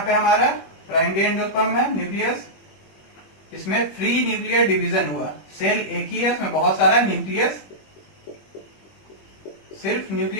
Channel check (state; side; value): late; right; 21 ms